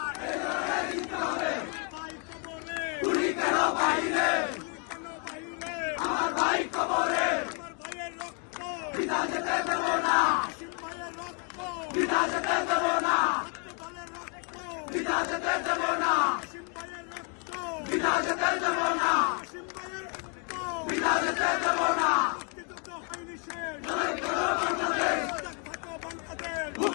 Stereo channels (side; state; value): right; quieter; 37.0 dB